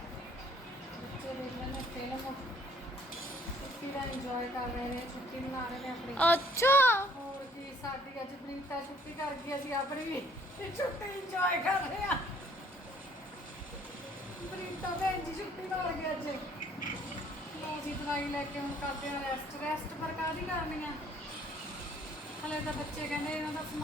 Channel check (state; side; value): normal; both; correlation 0.60